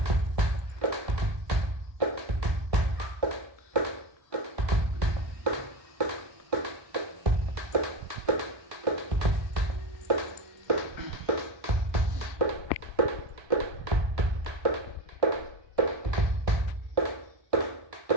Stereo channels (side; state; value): left; late; 1.2 ms